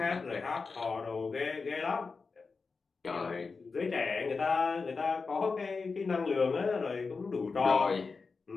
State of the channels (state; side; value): quieter; right; 4.5 dB